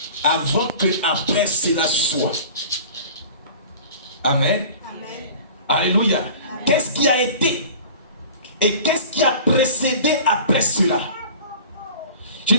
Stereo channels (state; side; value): inverted; both; correlation -0.41